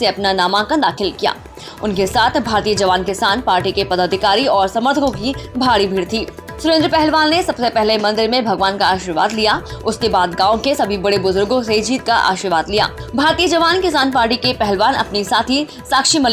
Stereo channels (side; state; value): both; identical; correlation 1.00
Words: अपना नामांकन दाखिल किया। उनके साथ भारतीय जवान किसान पार्टी के पदाधिकारी और समर्थकों की भारी भीड़ थी। सुरेंद्र पहलवान ने सबसे पहले मंदिर में भगवान का आशीर्वाद लिया। उसके बाद गांव के सभी बड़े बुजुर्गों से जीत का आशीर्वाद लिया। भारतीय जवान किसान पार्टी के पहलवान अपनी साथी साक्षी